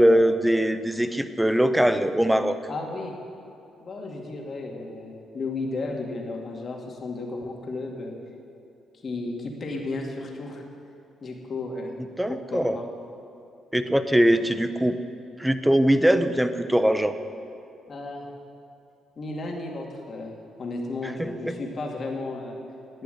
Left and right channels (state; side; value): normal; both; correlation 0.94